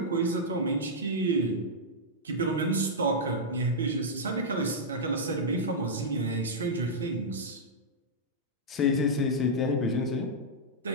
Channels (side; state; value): both; normal; correlation -0.08